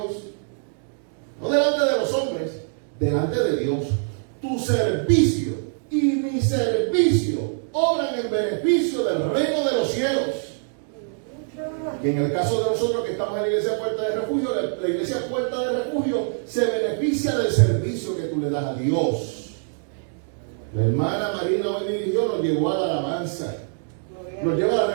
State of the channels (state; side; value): silent; left; digital silence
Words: No delante de los hombres, delante de Dios. Tu servicio y mi servicio obran en beneficio del reino de los cielos. Y en el caso de nosotros que estamos en la iglesia Puerta de Refugio, la iglesia Puerta de Refugio se beneficia del servicio que tú le das a Dios. La hermana Marina hoy dirigió, nos llevó a la alabanza, nos lleva a